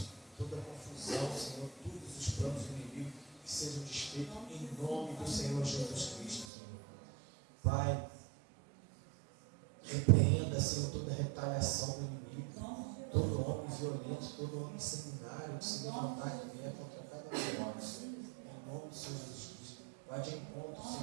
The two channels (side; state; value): left; drops out; at 6.5 s